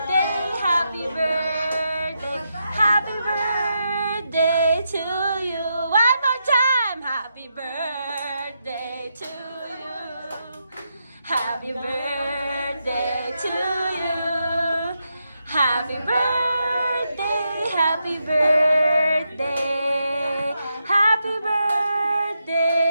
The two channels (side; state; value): both; inverted; correlation -0.84